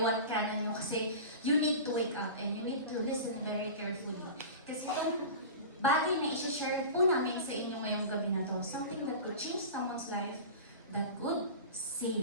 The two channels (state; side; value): inverted; both; correlation -0.32